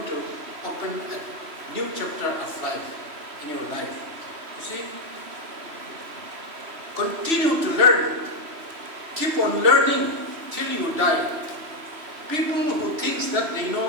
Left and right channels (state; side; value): late; left; 3.0 ms